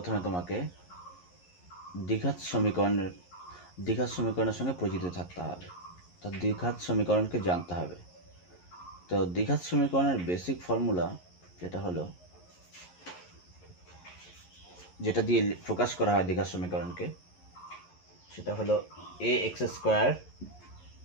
তোমাকে দ্বিঘাত সমীকরণের সঙ্গে পরিচিত থাকতে হবে। তো দ্বিঘাত সমীকরণকে জানতে হবে। তো দ্বিঘাত সমীকরণের বেসিক ফর্মুলা যেটা দিয়ে প্রকাশ করা হয় দ্বিঘাত সমীকরণকে, সেটা হলো a x square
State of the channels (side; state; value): right; late; 11 ms